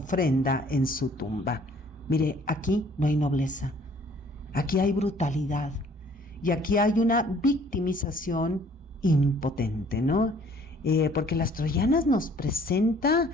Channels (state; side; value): normal; both; correlation 0.57